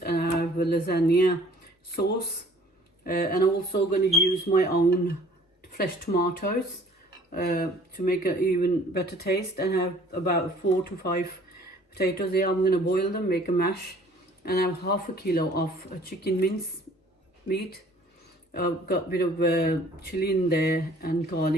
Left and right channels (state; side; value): normal; both; correlation 0.53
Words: and I have a lasagna sauce, and I'm also going to use my own fresh tomatoes to make an even better taste. And I have about 4 to 5 potatoes here. I'm going to boil them, make a mash, and I have half a kilo of chicken mince meat. I've got a bit of chili in there and